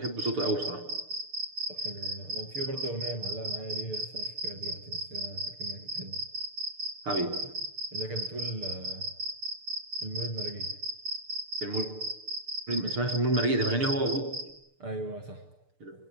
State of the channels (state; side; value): late; left; 6.7 ms